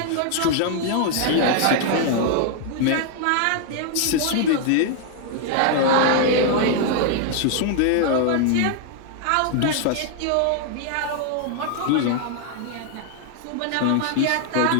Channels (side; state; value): both; different; correlation 0.00